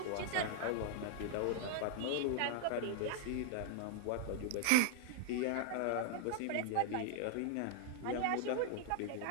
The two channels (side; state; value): both; different; correlation 0.00